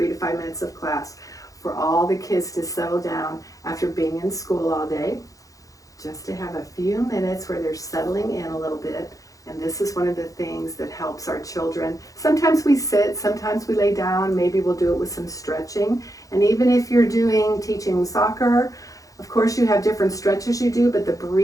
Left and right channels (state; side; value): late; right; 0.17 ms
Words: to 5 minutes of class for all the kids to settle down after being in school all day, just to have a few minutes where they're settling in a little bit. And this is one of the things that helps our children. Sometimes we sit, sometimes we lay down, maybe we'll do it with some stretching. And even if you're teaching soccer, of course you have different stretches you do, but the